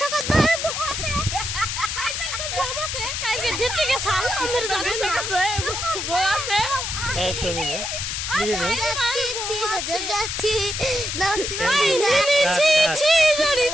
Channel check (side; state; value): left; noise; hiss, 3 dB below the sound